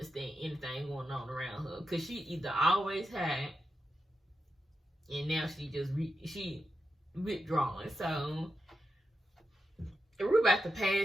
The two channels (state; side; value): normal; both; correlation 0.88